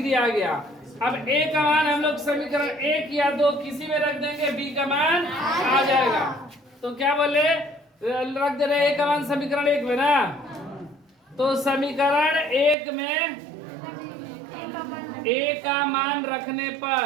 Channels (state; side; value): drops out; left; at 12.8 s